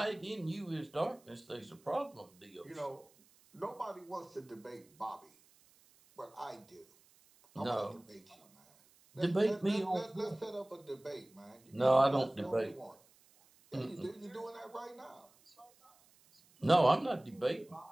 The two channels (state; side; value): noise; right; hiss, 29 dB below the sound